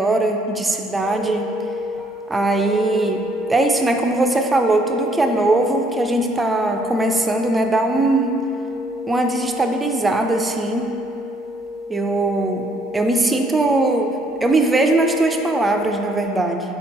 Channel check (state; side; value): normal; both; correlation 0.67